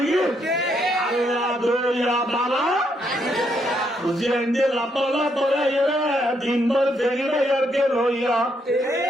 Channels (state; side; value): normal; both; correlation 0.75